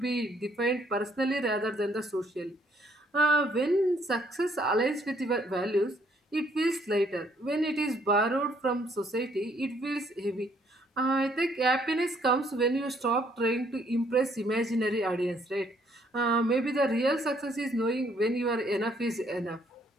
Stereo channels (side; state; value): both; normal; correlation 0.66